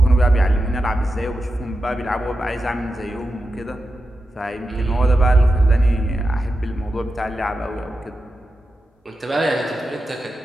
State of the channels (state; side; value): normal; both; correlation 0.90